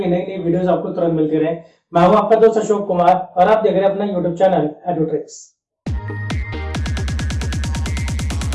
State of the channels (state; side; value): identical; both; correlation 1.00